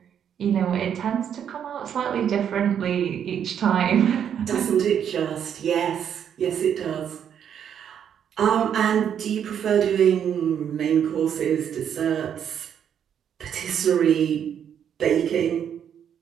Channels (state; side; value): quieter; left; 8.7 dB